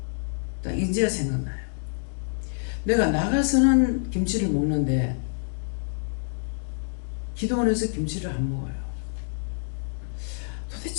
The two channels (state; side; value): silent; right; digital silence